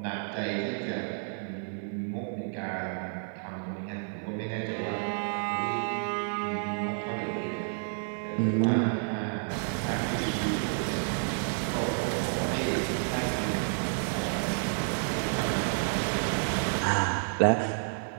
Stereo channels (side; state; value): left; silent; 58 dB below the other